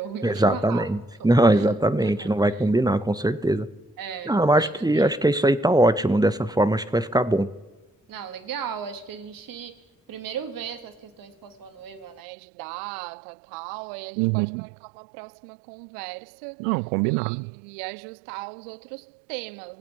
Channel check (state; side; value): drops out; left; at 12.2 s